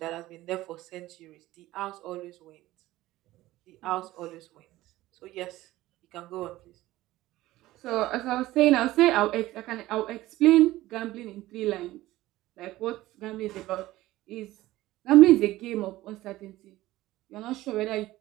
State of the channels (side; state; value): left; quieter; 16.7 dB